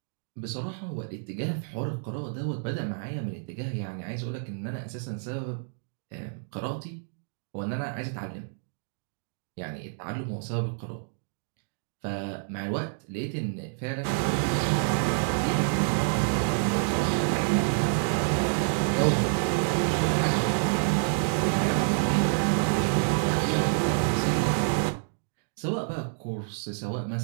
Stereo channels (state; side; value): silent; left; digital silence